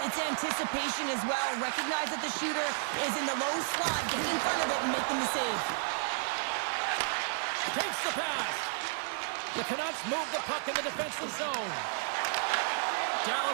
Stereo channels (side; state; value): left; silent; digital silence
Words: It's anticipation as well. Recognize that the shooter is in the low slot, getting in front of it and making the save. Takes the pass. The Canucks move the puck in the defensive zone.